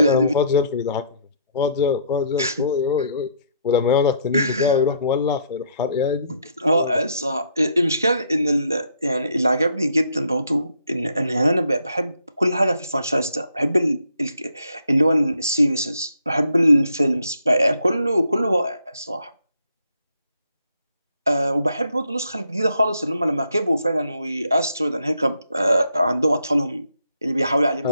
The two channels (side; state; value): both; inverted; correlation -0.69